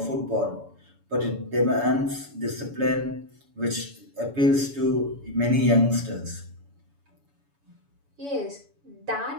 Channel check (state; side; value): late; left; 7.0 ms